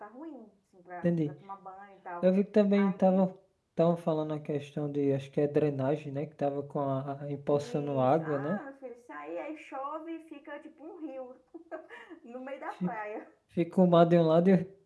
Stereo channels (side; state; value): both; identical; correlation 1.00